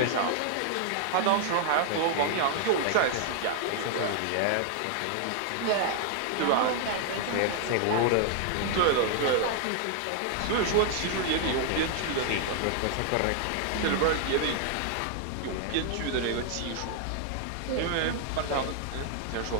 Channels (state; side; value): different; both; correlation 0.00